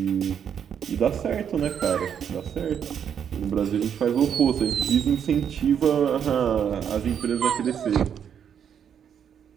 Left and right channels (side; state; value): left; quieter; 8.3 dB